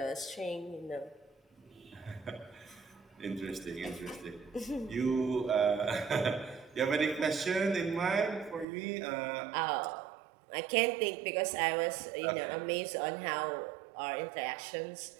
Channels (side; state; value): left; drops out; at 8.7 s